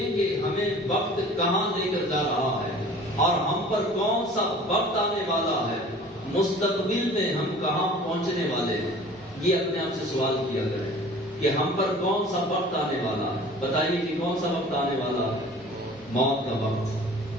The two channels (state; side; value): normal; both; correlation 0.46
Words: کہ ہمیں وقت کہاں لے کر جا رہا ہے، اور ہم پر کون سا وقت آنے والا ہے، مستقبل میں ہم کہاں پہنچنے والے ہیں۔ یہ اپنے آپ سے سوال کیا کریں کہ ہم پر کون سا وقت آنے والا ہے. بتائیے کہ کون سا وقت آنے والا ہے؟ موت کا وقت،